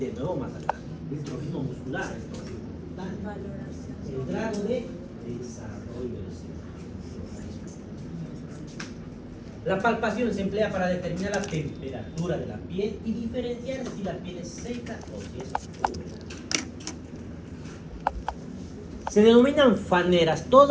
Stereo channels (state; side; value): identical; both; correlation 1.00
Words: nuevo más adelante. El trofismo muscular, el trofismo muscular. El grado de desarrollo del organismo. La palpación se emplea para determinar la temperatura de la piel y diferenciar si la piel es seca o si es húmeda. Se denominan faneras